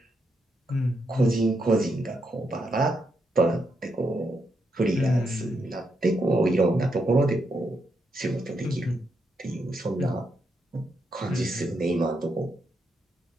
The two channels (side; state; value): both; normal; correlation 0.81